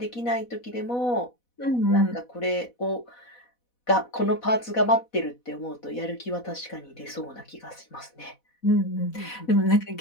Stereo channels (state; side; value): late; right; 4.1 ms